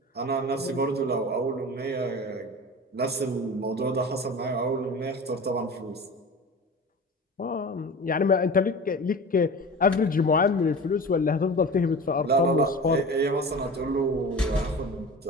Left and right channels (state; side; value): normal; both; correlation 0.34